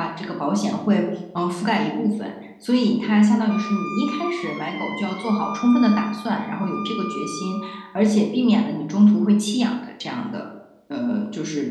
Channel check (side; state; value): both; identical; correlation 1.00